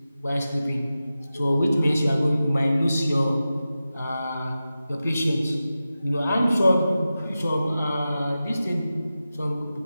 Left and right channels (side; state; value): both; inverted; correlation -0.93